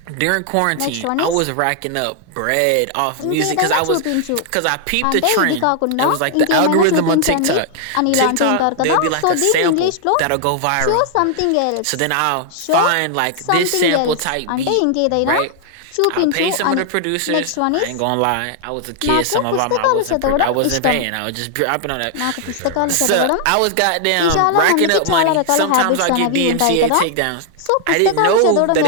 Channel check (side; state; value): both; different; correlation 0.00